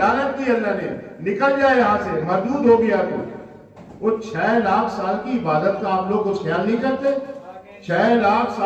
की अल्लाह ने, निकल जाए यहाँ से, मरदूद हो गया। तो वो 6 लाख साल की इबादत का आप लोग कुछ ख्याल नहीं करते? 6 लाख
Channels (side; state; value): both; identical; correlation 1.00